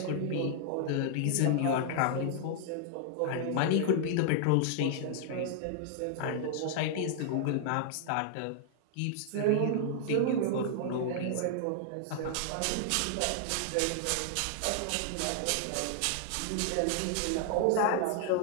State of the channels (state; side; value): different; both; correlation -0.01